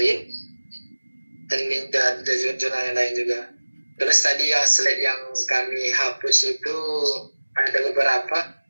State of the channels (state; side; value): inverted; both; correlation -1.00